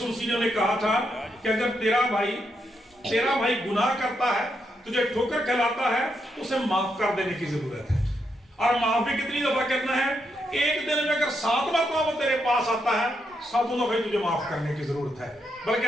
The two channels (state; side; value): normal; both; correlation 0.81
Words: نے انہیں کہا تھا کہ اگر تیرا بھائی گناہ کرتا ہے، تجھے ٹھوکر کھلاتا ہے، اسے معاف کر دینے کی ضرورت ہے. اور معاف بھی کتنی دفعہ کرنا ہے؟ ایک دن میں اگر 7 مرتبہ وہ تیرے پاس آتا ہے، 7 دفعہ تجھے معاف کرنے کی ضرورت ہے. بلکہ